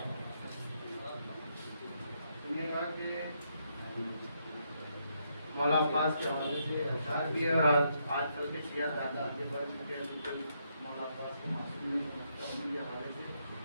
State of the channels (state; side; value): inverted; both; correlation -0.77